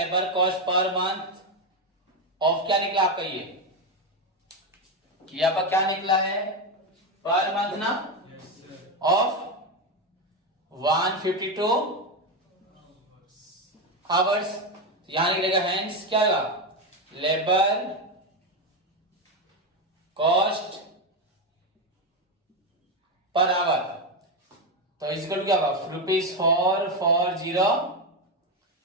cost per month of क्या निकला आपका? ये आपका क्या निकला है? पर मंथ ना, ऑफ 152 आवर्स। यहां निकलेगा हेंस क्या होगा? लेबर कॉस्ट पर आवर तो इजिकल क्या होगा?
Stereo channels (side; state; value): both; normal; correlation 0.10